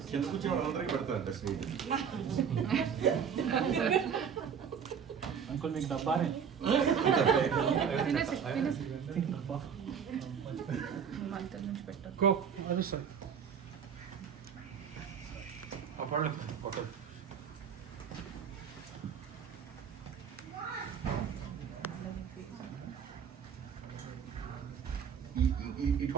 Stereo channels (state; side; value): quieter; left; 7.3 dB